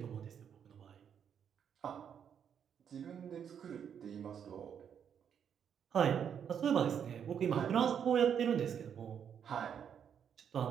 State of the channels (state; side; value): quieter; left; 8.1 dB